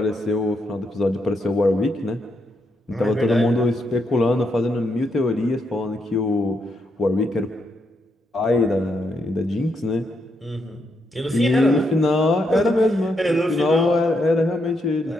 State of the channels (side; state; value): both; normal; correlation 0.79